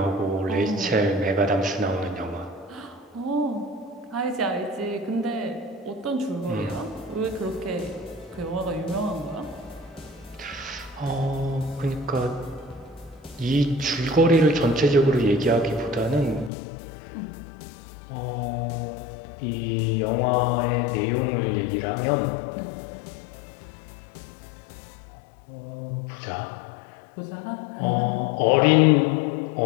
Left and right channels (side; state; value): right; drops out; at 16.5 s